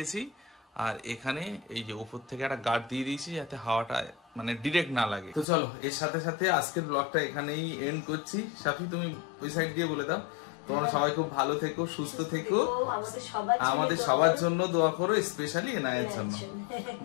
আর এখানে এই যে উপর থেকে একটা গার্ড দিয়ে দিয়েছি, যাতে হাওয়াটা মানে ডিরেক্ট না লাগে। তো চলো, এর সাথে সাথে আজকের ব্লগটা এখানেই এন্ড করছি। সাফি তুমি ওই সাইড দিয়ে বলে দাও। তোমরা সবাই খুব ভালো থেকো, সুস্থ থেকো, আমাদের সবার জন্য দোয়া করো, স্পেশালি এনায়ের জন্য।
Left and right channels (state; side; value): drops out; right; at 5.5 s